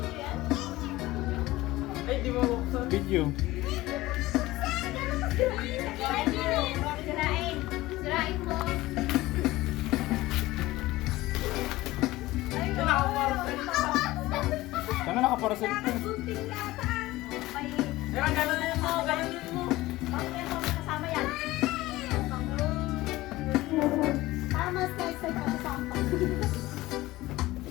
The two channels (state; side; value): quieter; right; 18.1 dB